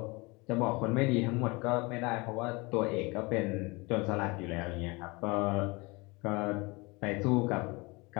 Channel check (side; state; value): right; quieter; 25.7 dB